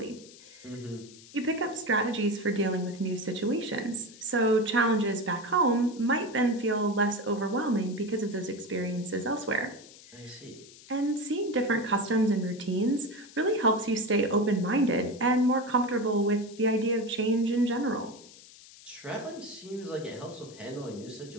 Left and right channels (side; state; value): left; noise; hiss, 20 dB below the sound